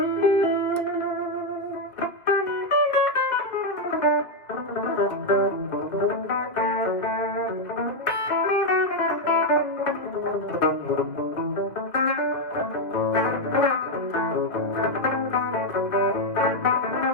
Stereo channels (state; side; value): late; right; 2.1 ms